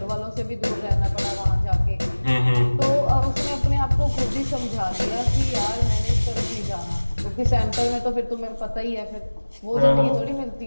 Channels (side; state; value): both; inverted; correlation -1.00